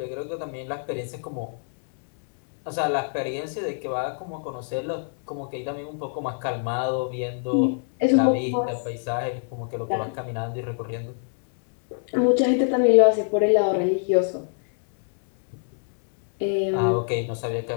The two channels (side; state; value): right; silent; digital silence